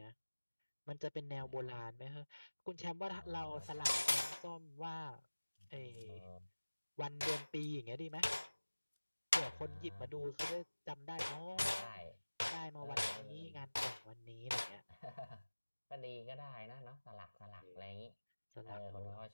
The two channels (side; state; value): both; inverted; correlation -1.00